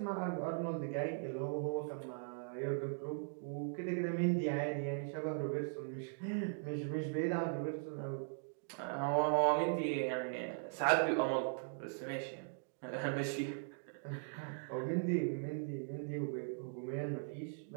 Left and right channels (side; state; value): left; silent; digital silence